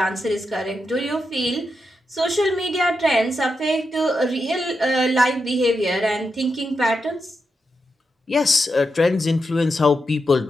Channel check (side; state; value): both; normal; correlation 0.86